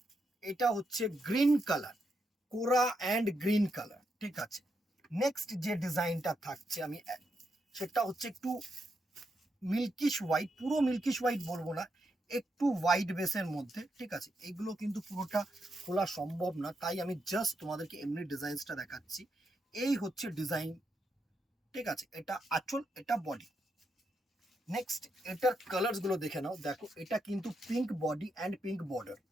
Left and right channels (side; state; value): both; normal; correlation 0.82